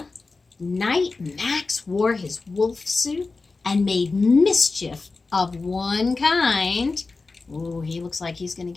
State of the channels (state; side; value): quieter; right; 3.9 dB